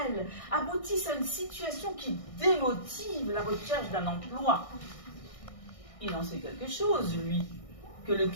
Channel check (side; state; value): right; late; 1.6 ms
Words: aboutisse à une situation qui démotive la recherche d'un emploi. Il en sait quelque chose, lui, que le